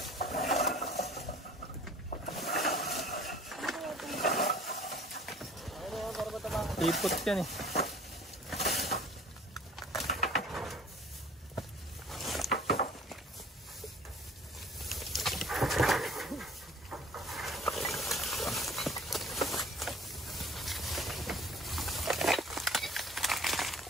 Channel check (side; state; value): both; normal; correlation 0.49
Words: Ipot yan eh.